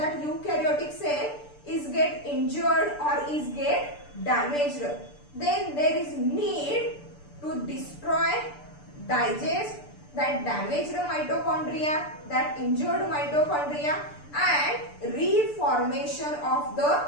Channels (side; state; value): right; late; 6.8 ms